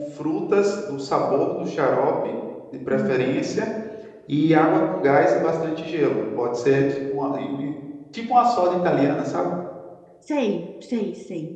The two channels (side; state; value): both; identical; correlation 1.00